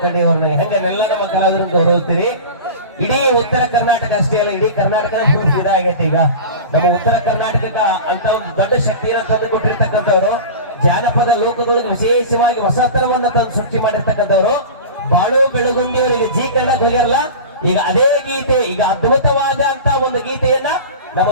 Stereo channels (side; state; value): both; inverted; correlation -0.32